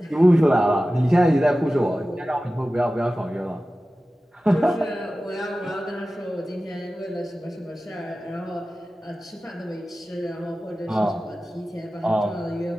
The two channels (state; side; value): normal; both; correlation 0.95